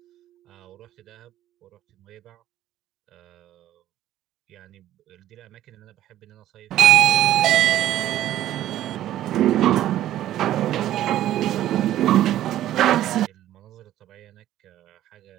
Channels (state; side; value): quieter; left; 13.0 dB